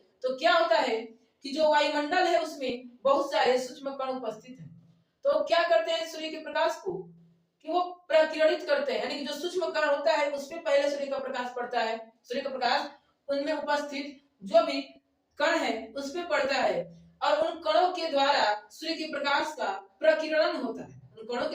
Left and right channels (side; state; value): both; identical; correlation 1.00